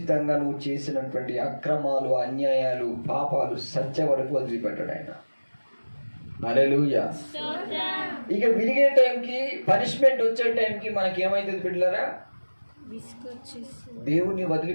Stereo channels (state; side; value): inverted; both; correlation -1.00